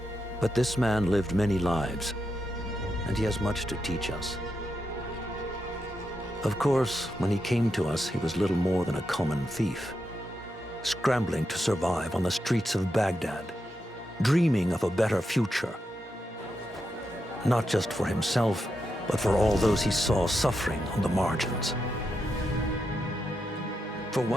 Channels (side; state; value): both; normal; correlation 0.85